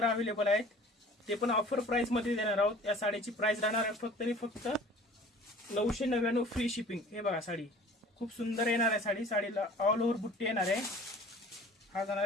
अवेलेबल आहेत. ते पण ऑफर प्राईसमध्ये देणार आहोत. या साडीची प्राईस राहणार आहे फक्त आणि फक्त 999 फ्री शिपिंग. हे बघा साडी खूप सुंदर येणार आहे. साडीला ऑल ओव्हर बुट्टी येणार आहे. हा जाणार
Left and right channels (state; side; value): normal; both; correlation 0.47